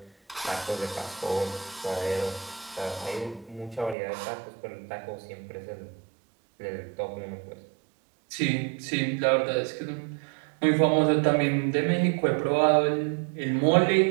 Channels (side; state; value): left; drops out; at 4.0 s